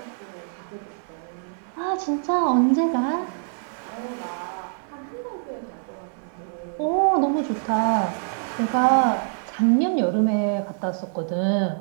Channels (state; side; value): silent; left; digital silence